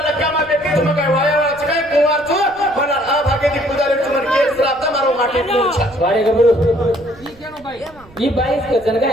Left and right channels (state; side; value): noise; right; rumble, 25 dB below the sound